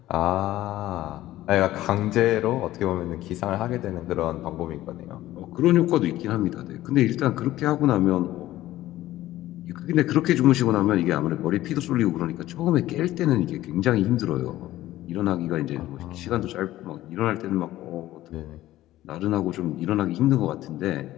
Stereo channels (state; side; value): quieter; right; 15.1 dB